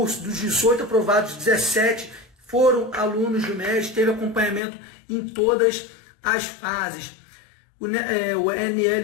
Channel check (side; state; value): right; drops out; at 4.6 s